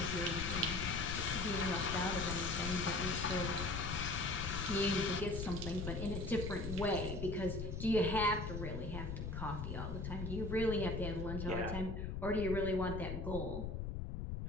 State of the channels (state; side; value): noise; left; rumble, 4 dB below the sound